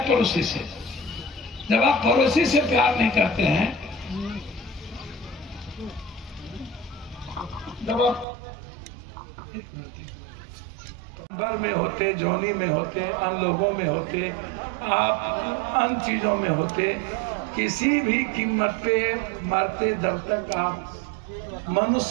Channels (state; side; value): drops out; left; at 8.2 s